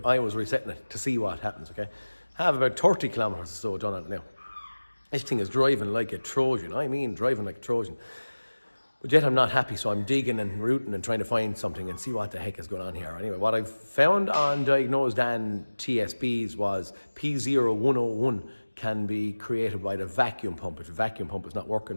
I was resetting it to see what happens, okay? I have about 30 kilometers or so done on it now. This thing is driving like a Trojan. I mean, driving like a Trojan. But yet I'm not happy, so I'm digging and rooting and trying to find something and see what the heck is going on here. Anyway, what I found on Diagnosing TSBs was P0101 can be created by the vacuum pump if the vacuum pump is not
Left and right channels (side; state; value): both; inverted; correlation -1.00